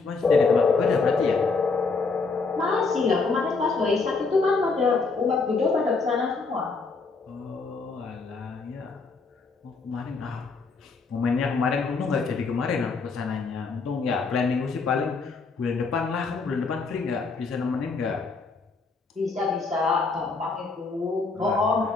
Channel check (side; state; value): right; quieter; 4.3 dB